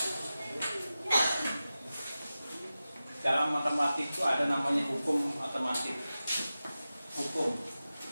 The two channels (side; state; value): both; inverted; correlation -0.94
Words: Dalam matematik itu ada namanya hukum matematik, hukum